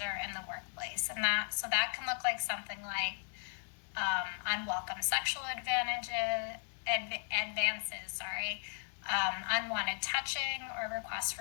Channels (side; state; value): right; silent; 54 dB below the other